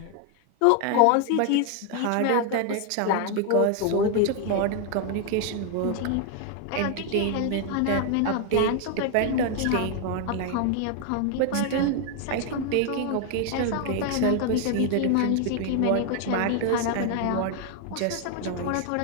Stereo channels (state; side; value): different; both; correlation 0.00